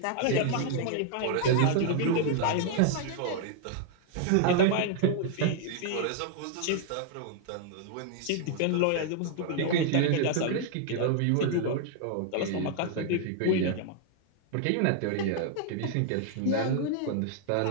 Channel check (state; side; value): different; both; correlation 0.00